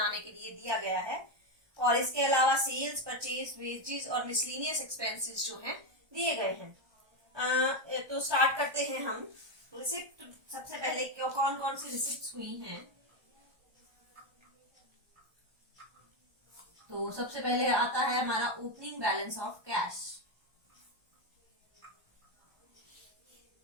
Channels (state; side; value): late; left; 1.2 ms